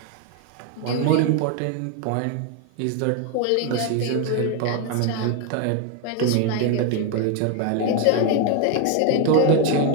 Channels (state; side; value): different; both; correlation 0.01